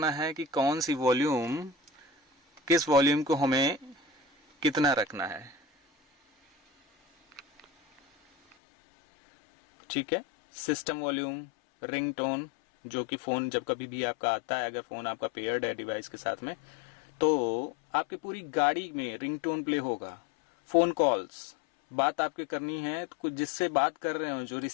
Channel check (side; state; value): right; drops out; at 8.6 s